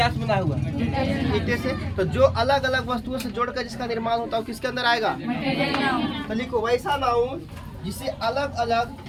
से बना हुआ है? ईटे से। तो जो अलग अलग वस्तुओं से जोड़कर जिसका निर्माण होता है वो किसके अंदर आएगा? तो लिखो वैसा नाउन जिसे अलग अलग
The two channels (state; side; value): identical; both; correlation 1.00